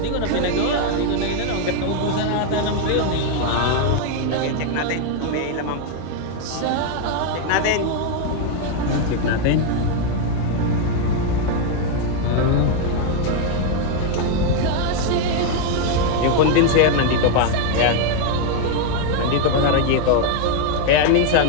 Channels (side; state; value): both; different; correlation 0.01